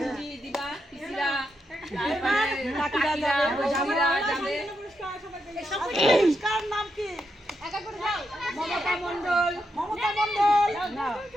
দিবা, পিসিরা, কাকিরা যাবে, জামিরা যাবে, পুরস্কার নাম কি একা করে দাও মমতা মণ্ডল, মমতা মণ্ডল না,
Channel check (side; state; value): both; normal; correlation 0.84